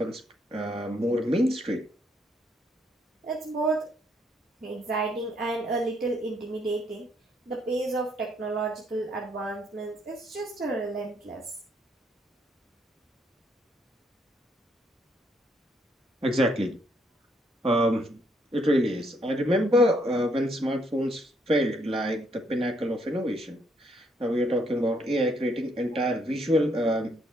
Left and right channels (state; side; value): normal; both; correlation 0.71